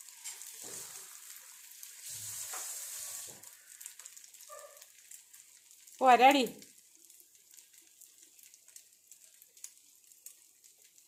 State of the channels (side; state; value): both; identical; correlation 1.00